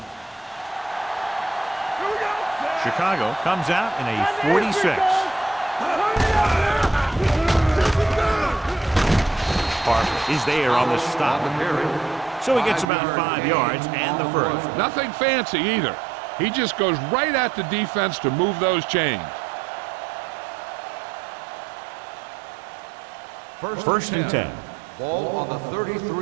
Chicago comes out in a 46. Harper is there on the stop. So he gets about 5 yards and the first. Nothing fancy either. He just goes right at the defense to move those chains. First and 10. Ball on the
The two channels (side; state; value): left; drops out; at 12.9 s